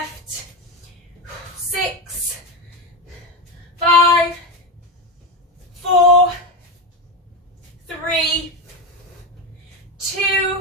6, 5, 4, 3,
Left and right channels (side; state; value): both; normal; correlation 0.15